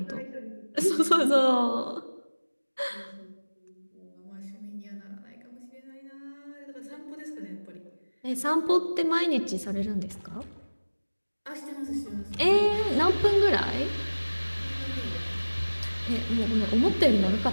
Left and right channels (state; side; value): inverted; both; correlation -1.00